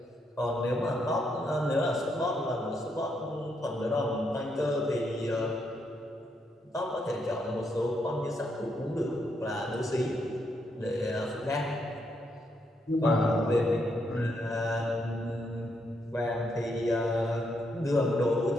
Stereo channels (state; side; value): normal; both; correlation 0.78